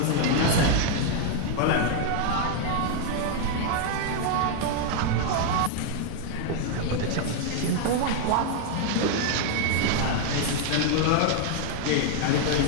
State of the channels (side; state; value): both; different; correlation 0.00